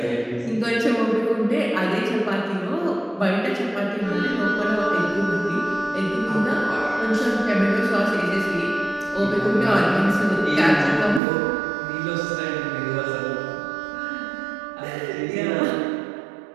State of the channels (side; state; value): left; drops out; at 11.2 s